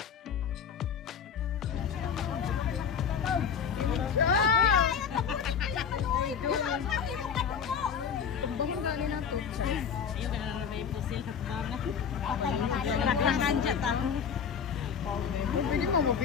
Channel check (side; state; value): right; quieter; 7.1 dB